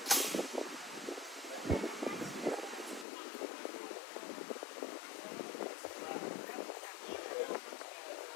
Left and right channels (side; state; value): right; drops out; at 3.1 s